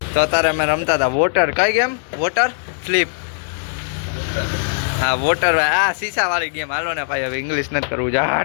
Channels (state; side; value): silent; right; 66 dB below the other